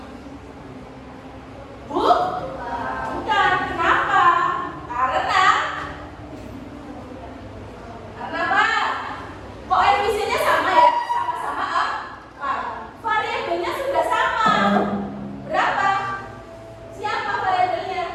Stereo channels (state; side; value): identical; both; correlation 1.00